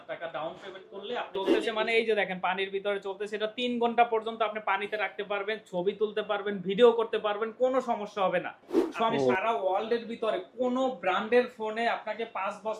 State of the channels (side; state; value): both; identical; correlation 1.00